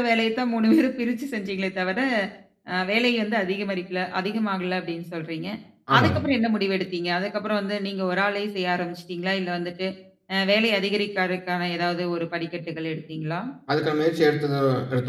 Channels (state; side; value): identical; both; correlation 1.00